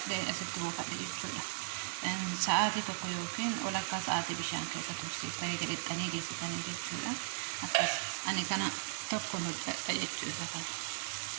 أسبتمو كادي تشولا ساعاتي تقولين ولا كساعاتي بشان كيسة تبصي تاني جريت تاني جيسي تاني جيت تشولا أكيس أنا كنا تكون تجي تشولا كان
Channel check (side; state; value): left; silent; 53 dB below the other